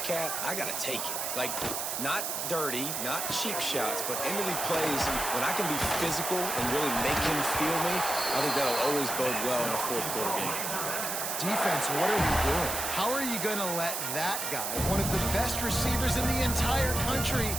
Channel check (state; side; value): noise; right; hiss, 2 dB below the sound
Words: I got to take it. Like, not dirty, not cheap shots, but into the plays. When I can be physical and really make him feel me, I think that'll always bode well in a fourth quarter game. Defense, what are we doing? How are you going to let that guy, one of the best receivers in the entire country,